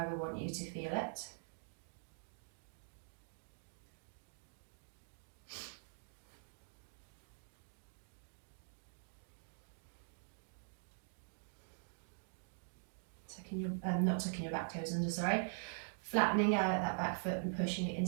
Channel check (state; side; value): silent; left; digital silence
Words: we want you to feel it. Not tucking your back toes under, sorry. Flattening out that back foot and pushing it